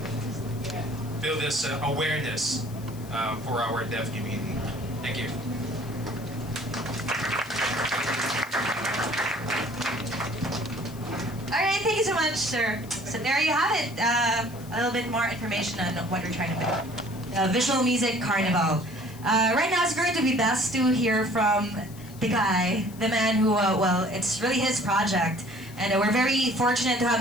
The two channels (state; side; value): noise; left; hiss, 20 dB below the sound